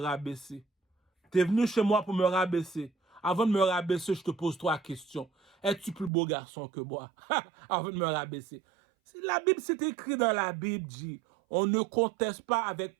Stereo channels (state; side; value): drops out; left; at 6.1 s